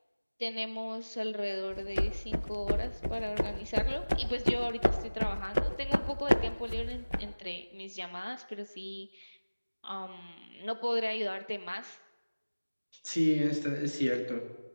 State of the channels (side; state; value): both; inverted; correlation -1.00